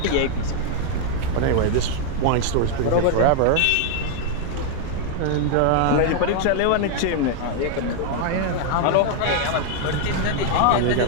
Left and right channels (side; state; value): both; different; correlation 0.00